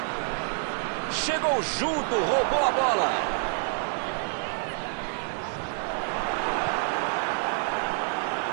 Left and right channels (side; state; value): left; silent; 60 dB below the other